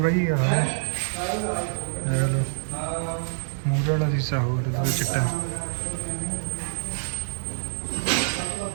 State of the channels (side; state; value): left; silent; digital silence